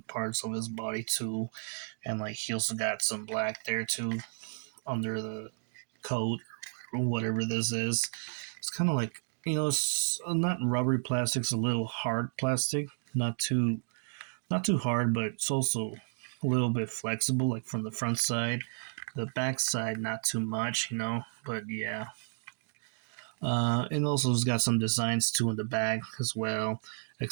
parts of his body too, and like he also got some black there too under the coat or whatever this is. It's kind of like, it's not rubbery plastic. It's a little hard plastic, not too hard, but it's also a little bit flexible, like from the front side. The back side, not too much, but yeah. And also it's got some designs too in the back as well,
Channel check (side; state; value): left; silent; digital silence